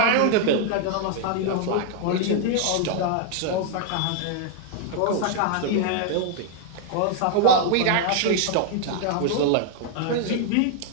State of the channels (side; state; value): both; different; correlation -0.01